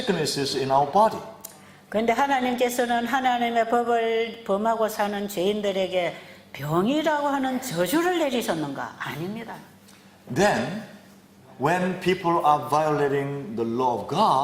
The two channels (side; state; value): both; identical; correlation 1.00